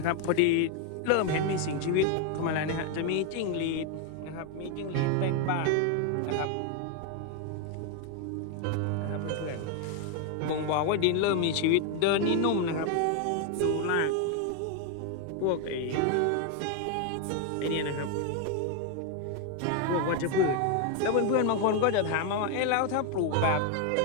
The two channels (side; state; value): both; different; correlation 0.01